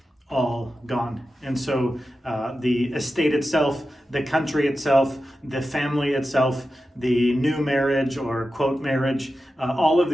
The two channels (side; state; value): both; normal; correlation 0.92